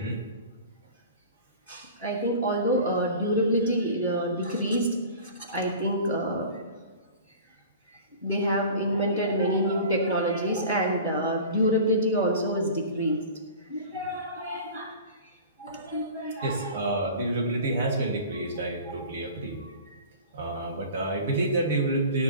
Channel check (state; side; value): inverted; both; correlation -0.39